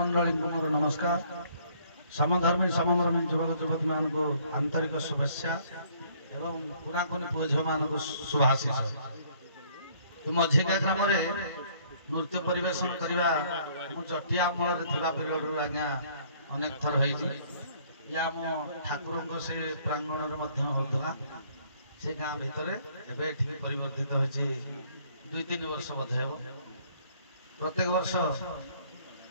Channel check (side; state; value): both; inverted; correlation -0.61